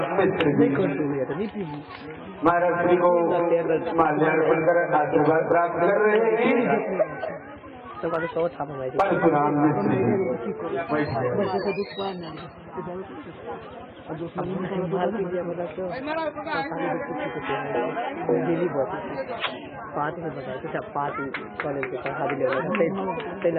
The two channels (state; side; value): identical; both; correlation 1.00